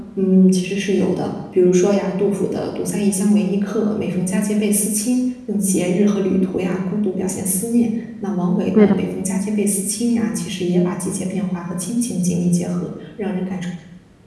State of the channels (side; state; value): both; identical; correlation 1.00